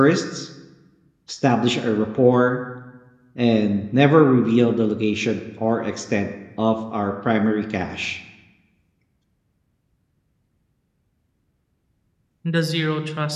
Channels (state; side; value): identical; both; correlation 1.00